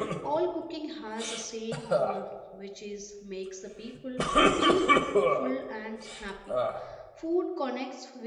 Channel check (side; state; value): both; identical; correlation 1.00